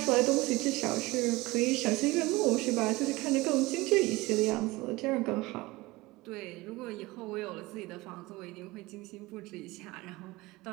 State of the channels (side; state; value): left; quieter; 21.0 dB